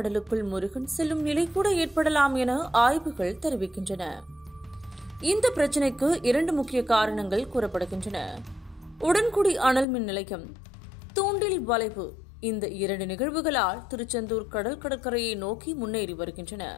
முருகன் செல்லும் நிலை கூட ஏற்படலாம் என ஆய்வுகள் தெரிவிக்கின்றன. இந்த பிரச்சினைக்கு 2 முக்கிய காரணங்கள் கூறப்படுகின்றன. உடன்குடி அனல் மின் நிலையம், தூண்டில் வளைவு. இந்த 2 நிகழ்வுகளால் திருச்செந்தூர் கடற்கரையை நோக்கி முன்னேறி வருகின்றன.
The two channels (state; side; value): drops out; right; at 9.9 s